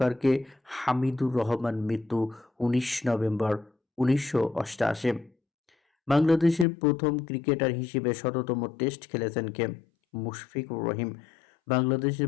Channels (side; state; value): right; drops out; at 6.7 s